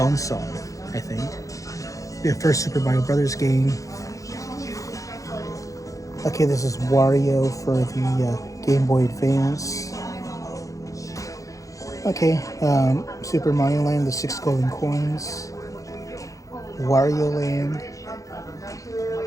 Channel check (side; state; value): right; late; 0.16 ms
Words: I think. The first Super Mario Brothers game. Okay, this is Wario for the Game Boy Advance. Okay, Super Mario Land, the 6 golden coins. Wario Land.